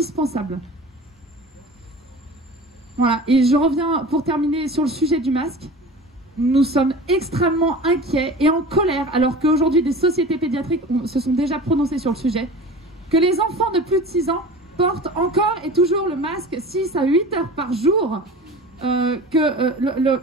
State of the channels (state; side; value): normal; both; correlation 0.37